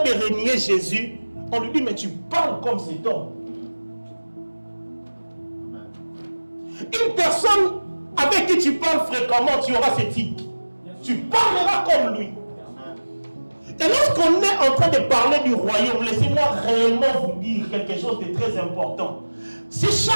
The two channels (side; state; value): both; inverted; correlation -1.00